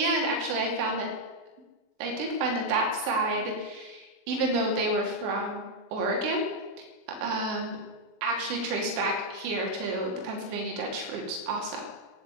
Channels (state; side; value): late; left; 21 ms